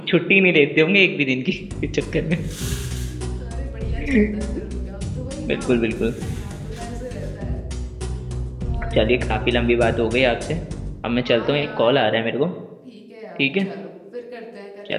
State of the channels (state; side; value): identical; both; correlation 1.00